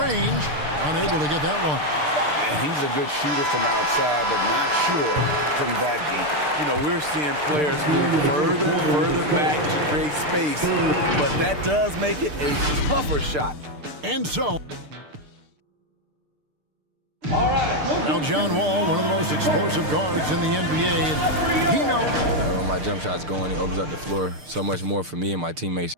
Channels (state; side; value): late; left; 6.7 ms